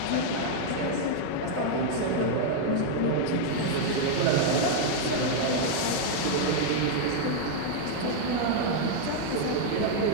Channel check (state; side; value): different; both; correlation 0.00